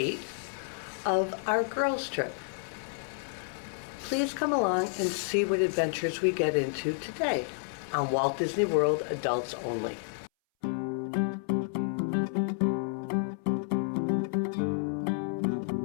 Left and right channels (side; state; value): right; silent; 58 dB below the other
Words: of our girls' trip. Please come along and see what adventures we get into today on Walt Disney World Adults Only.